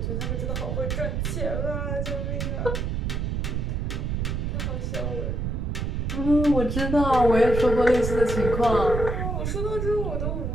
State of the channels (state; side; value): noise; right; rumble, 1 dB below the sound